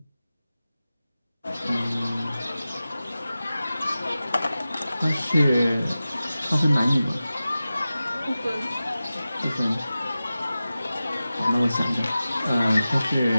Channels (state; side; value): inverted; both; correlation -0.95